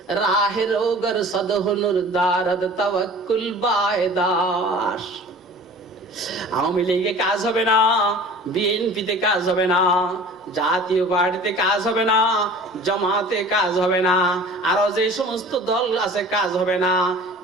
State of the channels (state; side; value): normal; both; correlation 0.43